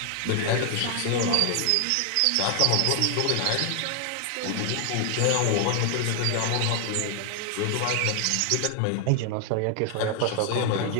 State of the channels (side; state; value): both; different; correlation 0.00